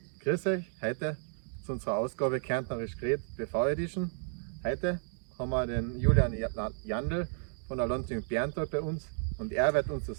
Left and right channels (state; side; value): silent; left; digital silence